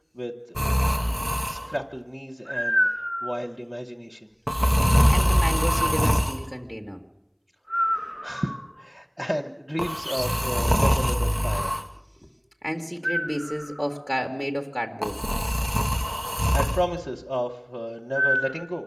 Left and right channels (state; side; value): identical; both; correlation 1.00